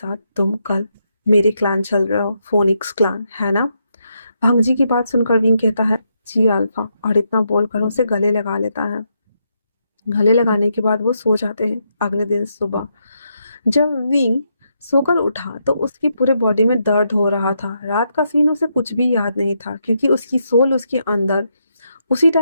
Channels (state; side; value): inverted; both; correlation -0.80